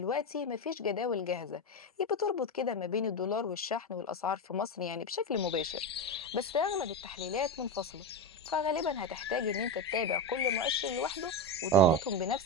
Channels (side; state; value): both; normal; correlation 0.15